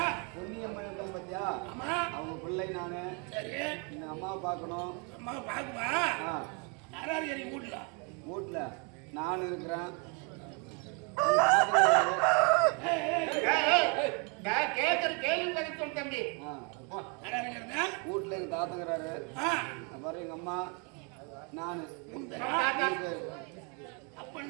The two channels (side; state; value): left; quieter; 34.6 dB